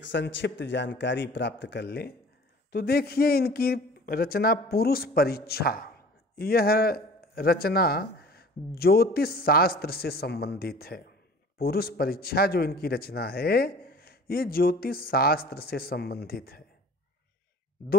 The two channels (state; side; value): normal; both; correlation 0.46